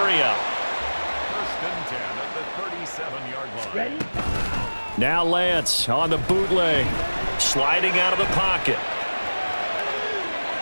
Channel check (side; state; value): both; inverted; correlation -1.00